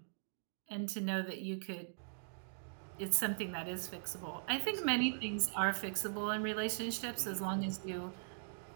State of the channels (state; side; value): silent; left; digital silence